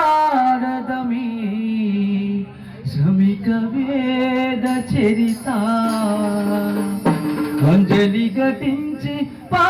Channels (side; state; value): both; identical; correlation 1.00